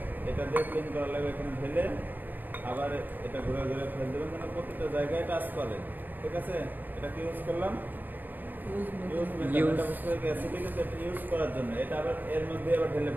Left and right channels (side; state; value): left; late; 0.089 ms